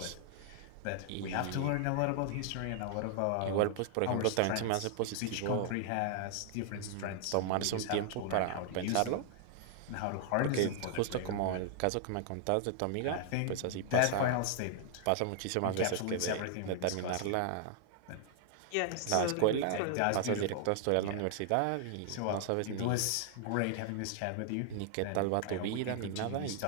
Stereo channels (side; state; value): both; different; correlation 0.00